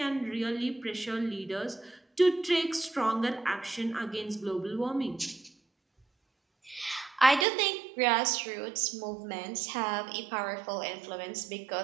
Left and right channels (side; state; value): left; drops out; at 7.5 s